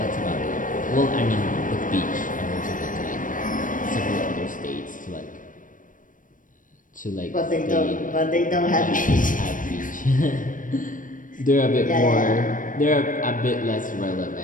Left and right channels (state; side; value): late; right; 0.38 ms